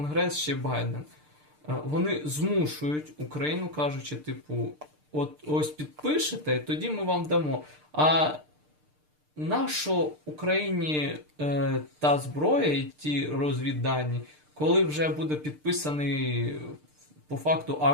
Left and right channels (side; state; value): left; late; 6.6 ms